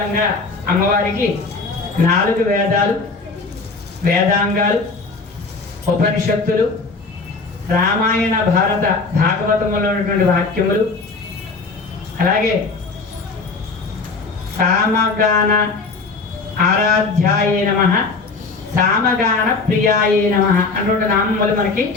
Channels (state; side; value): quieter; right; 4.1 dB